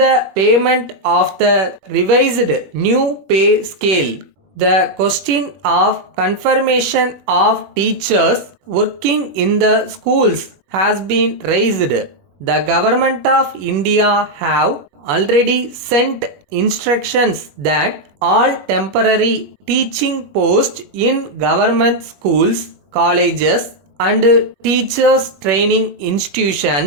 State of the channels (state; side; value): late; left; 21 ms